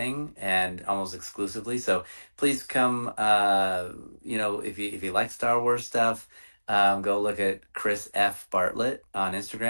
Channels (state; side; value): inverted; both; correlation -1.00